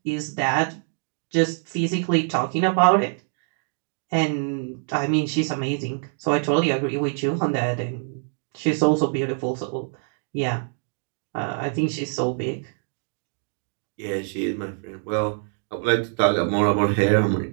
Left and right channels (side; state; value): left; silent; 56 dB below the other